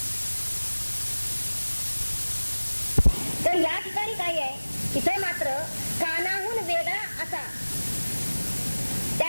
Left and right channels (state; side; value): inverted; both; correlation -1.00